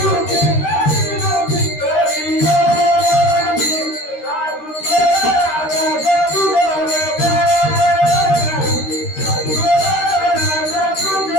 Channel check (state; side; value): late; right; 13 ms